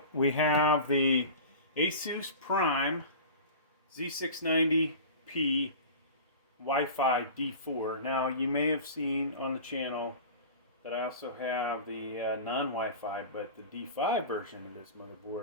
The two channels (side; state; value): both; inverted; correlation -0.35